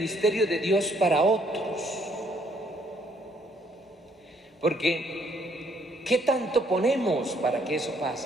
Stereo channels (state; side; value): normal; both; correlation 0.67